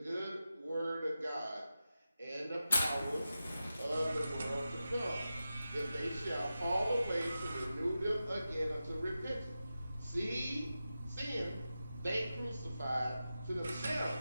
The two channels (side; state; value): both; inverted; correlation -0.92